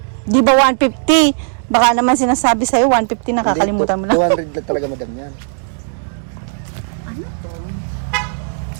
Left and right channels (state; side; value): silent; left; digital silence